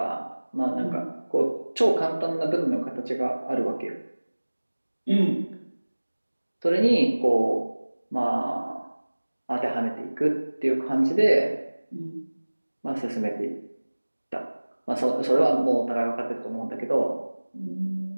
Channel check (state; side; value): inverted; both; correlation -1.00